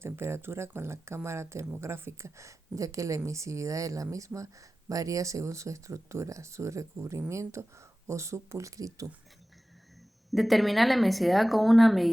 con la cámara termográfica, ya que la emisividad de la misma varía según su estructura, su recubrimiento o su pulcritud. Determinar la emisividad con una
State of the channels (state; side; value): normal; both; correlation 0.96